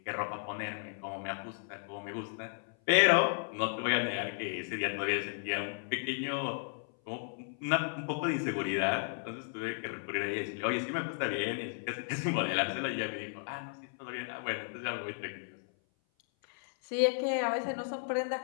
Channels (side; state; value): right; silent; 55 dB below the other